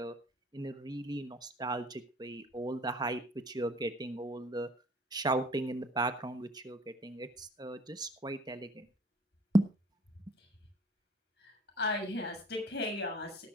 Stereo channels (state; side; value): normal; both; correlation 0.52